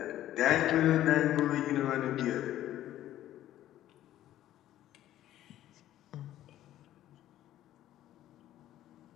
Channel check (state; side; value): quieter; right; 13.1 dB